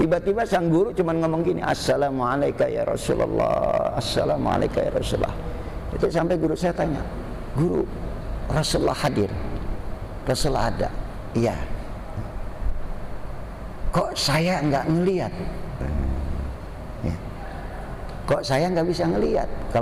sang guru cuma ngomong gini, Assalamualaikum ya Rasulullah, Assalamualaikum ya Rasulullah. Itu sampai guru saya tanya, guru, Rasulullah hadir? Rasulullah ada? Iya. Kok saya nggak ngelihat? Ya. Kok saya nggak bisa ngelihat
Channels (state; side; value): identical; both; correlation 1.00